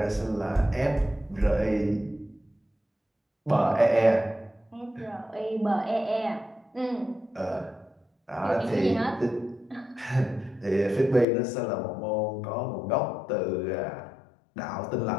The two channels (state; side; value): drops out; right; at 11.2 s